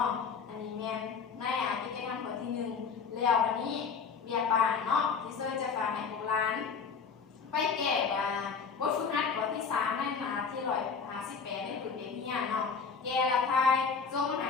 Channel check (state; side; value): quieter; right; 5.7 dB